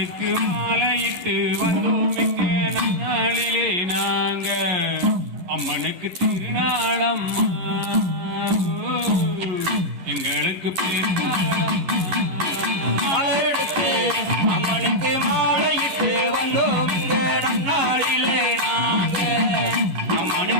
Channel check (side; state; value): left; late; 11 ms